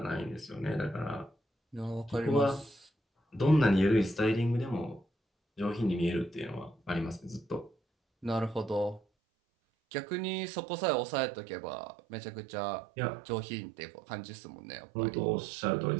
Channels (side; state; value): left; drops out; at 9.0 s